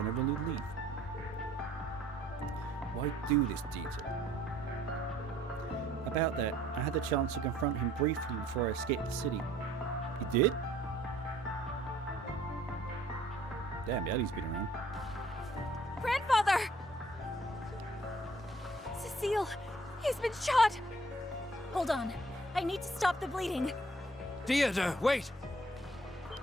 over a new leaf. Why do this, Dieter? About that, I had the chance to confront him briefly before I escaped the city. You did? Damn, Ellie's been around. Grandfather! Cecile, he's been shot! Hold on. I need to stop the bleeding. Dieter, wait!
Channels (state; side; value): normal; both; correlation 0.59